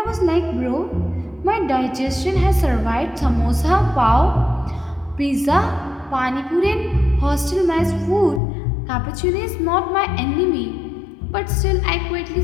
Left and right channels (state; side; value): drops out; right; at 8.4 s